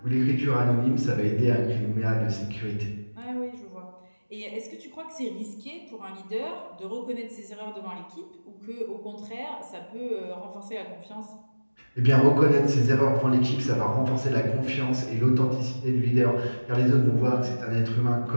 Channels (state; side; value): inverted; both; correlation -1.00